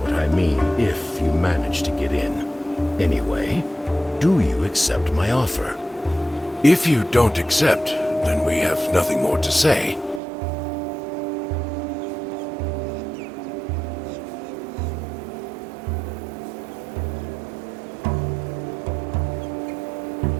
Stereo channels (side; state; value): left; drops out; at 10.2 s